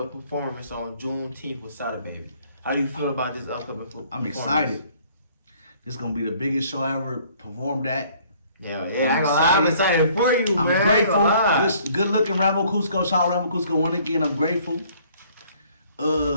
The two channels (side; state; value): both; inverted; correlation -0.59